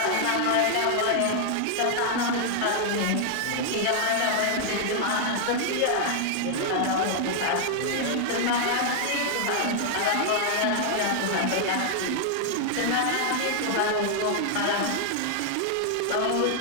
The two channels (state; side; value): different; both; correlation 0.00